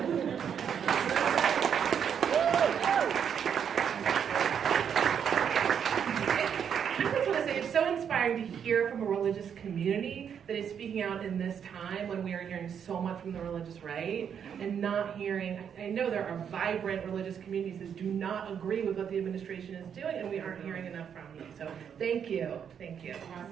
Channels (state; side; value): quieter; left; 7.9 dB